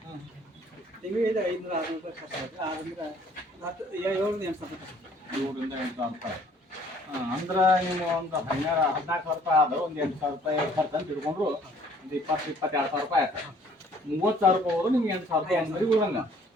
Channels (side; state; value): both; normal; correlation 0.59